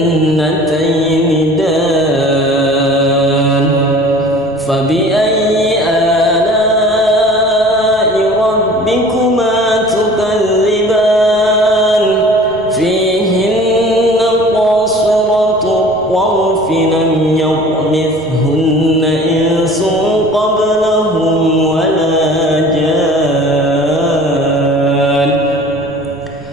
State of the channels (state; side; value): noise; right; rumble, 23 dB below the sound